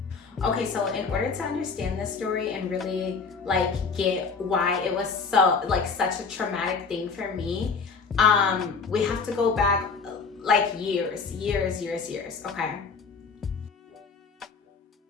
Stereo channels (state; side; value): quieter; right; 5.1 dB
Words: Okay, so in order to understand this story and really get why it was so such a traumatic thing for me, we have to go back years, okay?